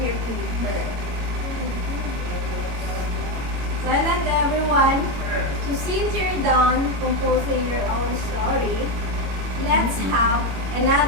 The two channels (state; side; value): late; left; 21 ms